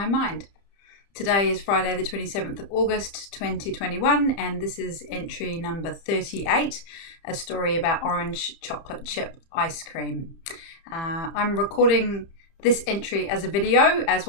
mind. Today is Friday the 27th of August 2021, and this is entry number 38, a story about orange chocolate chip ice cream. I'm recording this entry as a video as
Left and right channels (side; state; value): right; late; 30 ms